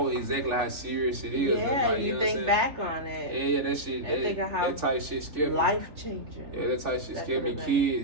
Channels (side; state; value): left; late; 3.4 ms